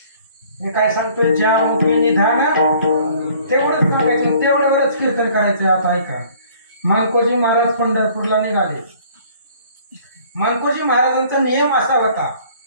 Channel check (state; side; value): inverted; both; correlation -0.55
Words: मी काय सांगतोय, ज्या मुखी निधान, तेवढंच सांगायचं, तेवढ्यावरच कीर्तन करायचं. आता ऐका, मानकोजी महाराज पंढरपूरला निघाले. मानकोजी महाराजांचा नियम असा होता,